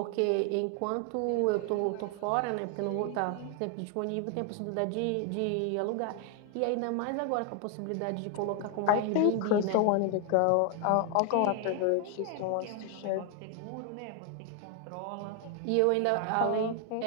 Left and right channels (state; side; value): different; both; correlation 0.00